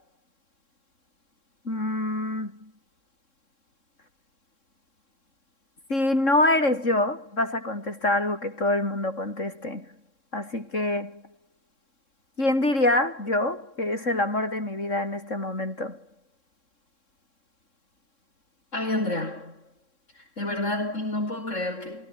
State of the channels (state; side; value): late; right; 3.7 ms